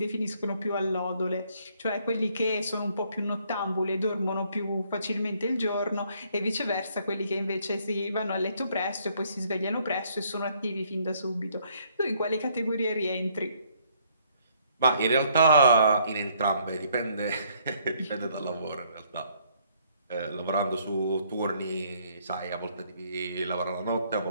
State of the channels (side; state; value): both; inverted; correlation -0.66